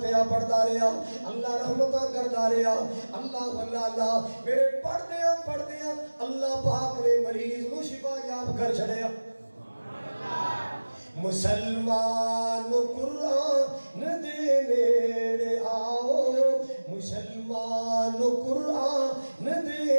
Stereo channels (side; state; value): both; inverted; correlation -1.00